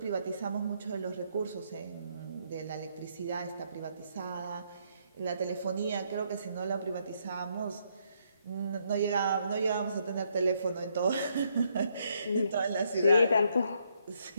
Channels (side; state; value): both; inverted; correlation -0.73